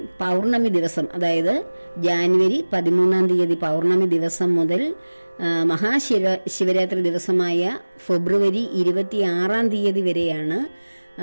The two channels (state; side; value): inverted; both; correlation -1.00